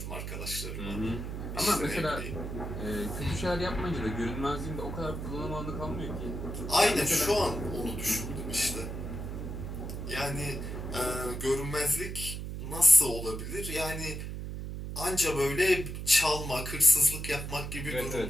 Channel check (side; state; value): right; noise; hum, 6 dB below the sound